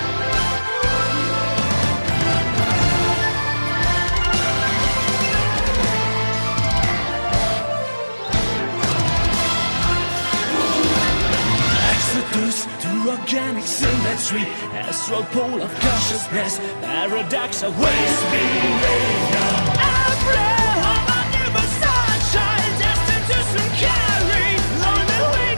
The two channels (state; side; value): inverted; both; correlation -1.00